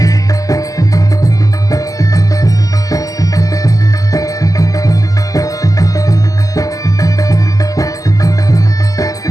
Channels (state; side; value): late; right; 0.17 ms